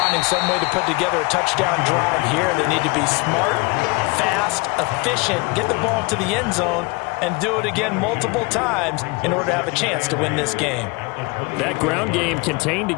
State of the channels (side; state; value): right; quieter; 26.9 dB